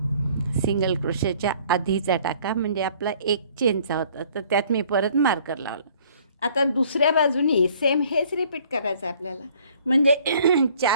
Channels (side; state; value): both; inverted; correlation -0.57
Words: सिंगल क्रोशेच्या आधीचा टाका म्हणजे आपला एक चेनचा होता, तर त्यात मी परत मार्कर लावलं. आता दुसऱ्या बाजूनी सेम हेच रिपीट करायचं आहे आपल्याला, म्हणजे